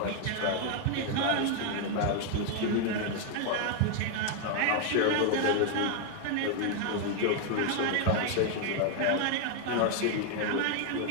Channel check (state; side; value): different; both; correlation 0.00